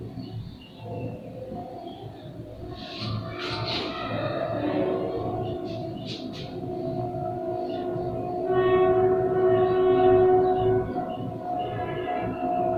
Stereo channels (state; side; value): identical; both; correlation 1.00